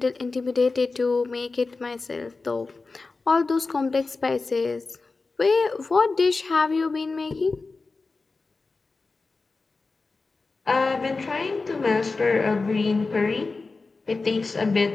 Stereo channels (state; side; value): quieter; right; 3.9 dB